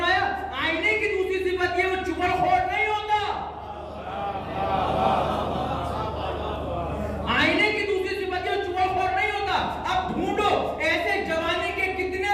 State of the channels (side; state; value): both; identical; correlation 1.00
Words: آئینے کی دوسری صفت یہ وہ چغل خور نہیں ہوتا. آئینے کی دوسری صفت یہ چغل خور نہیں ہوتا. اب ڈھونڈو ایسے جوانی کے